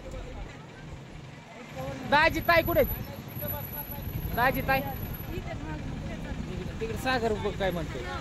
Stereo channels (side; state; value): both; identical; correlation 1.00